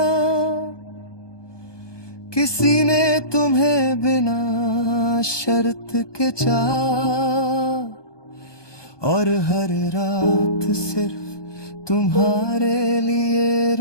किसी ने तुम्हें बिना शर्त के चाहा, और हर रात सिर्फ तुम्हारे लिए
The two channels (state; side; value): late; right; 1.2 ms